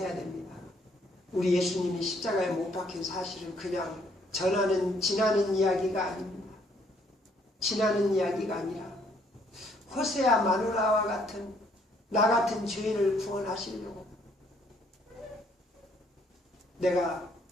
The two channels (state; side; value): normal; both; correlation 0.66